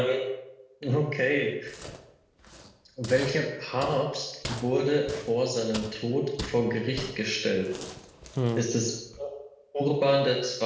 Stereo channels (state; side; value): identical; both; correlation 1.00